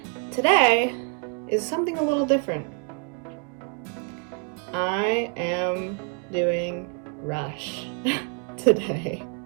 today is something a little different. I am doing Rush today.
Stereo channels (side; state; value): left; quieter; 35.4 dB